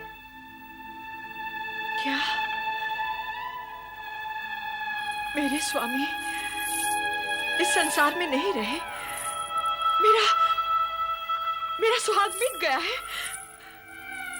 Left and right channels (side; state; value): both; identical; correlation 1.00